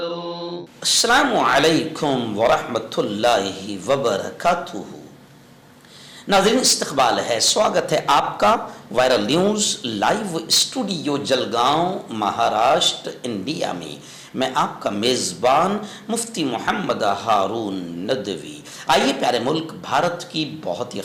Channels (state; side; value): identical; both; correlation 1.00